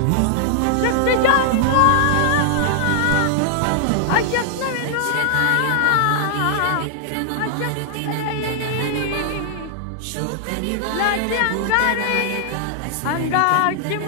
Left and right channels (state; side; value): different; both; correlation -0.01